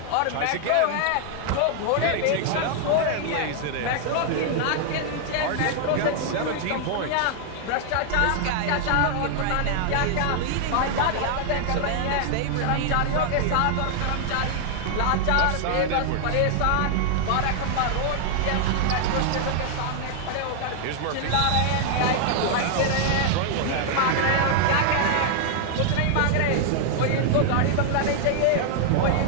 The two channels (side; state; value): both; different; correlation 0.00